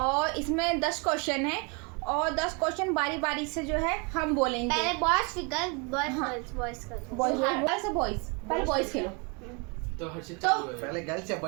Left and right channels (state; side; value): quieter; left; 31.8 dB